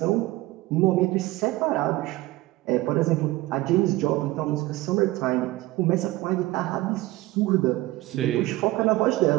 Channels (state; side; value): quieter; left; 18.2 dB